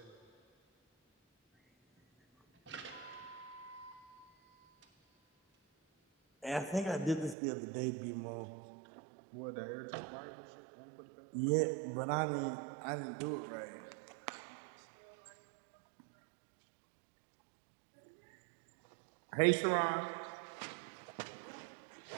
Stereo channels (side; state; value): left; drops out; at 7.4 s